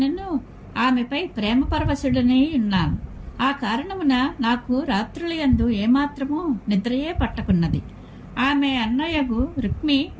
ఆమెపై ప్రేమ పరవశుడనై ఉన్నాను. ఆ కారణమున నాకు రాత్రుల యందు ఏమాత్రమూ నిద్రయే పట్టకున్నది. ఆమె అన్నయ్యగు రుక్మి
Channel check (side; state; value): both; identical; correlation 1.00